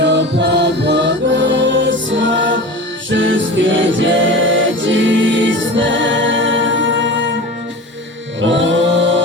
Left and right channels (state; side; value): normal; both; correlation 0.32